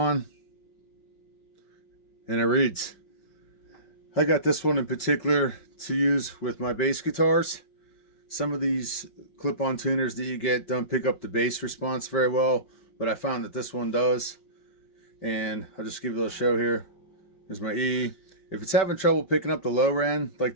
and it reads. I got this one in particular to use with my bass guitars. Some of these clip-on tuners that you get don't pick up the bass response very well, but I found that this one does. And I'll just give you a little show here. There's my E. If it's having trouble picking up the lower end, like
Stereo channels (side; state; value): right; late; 5.2 ms